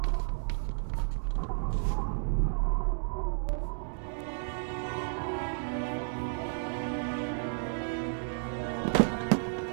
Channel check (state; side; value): silent; left; digital silence